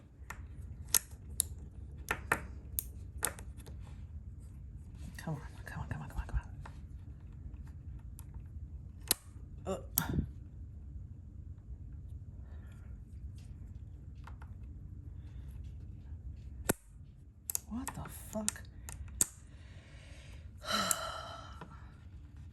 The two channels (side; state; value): both; identical; correlation 1.00